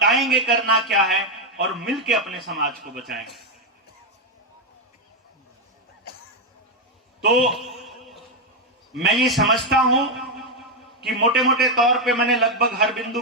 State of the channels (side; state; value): both; normal; correlation 0.04